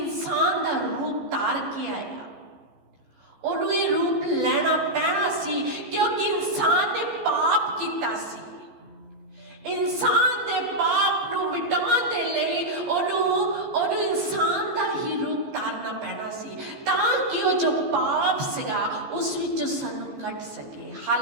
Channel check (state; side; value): late; left; 14 ms